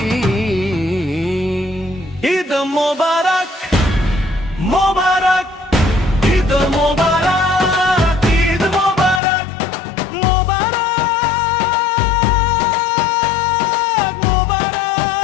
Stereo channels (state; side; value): drops out; right; at 9.2 s